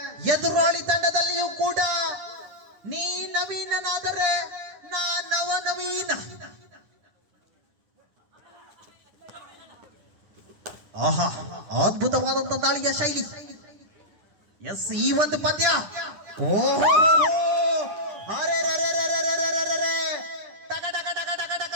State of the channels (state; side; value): late; left; 10 ms